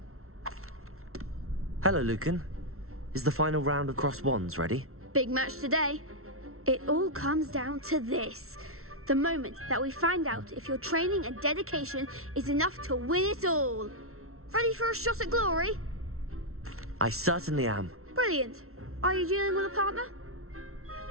Hello, Lucan. Is the final round of Cross Wands ready? Big match today. It all comes down to this. The moment that we find out if your training and dedication is enough to win it all. Ready for a shot at glory? I certainly am. Brilliant. Are you dealing with a partner?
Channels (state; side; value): late; left; 0.63 ms